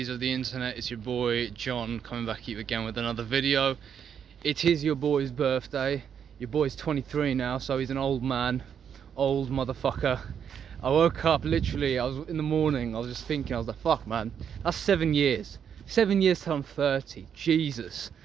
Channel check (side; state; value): left; quieter; 8.0 dB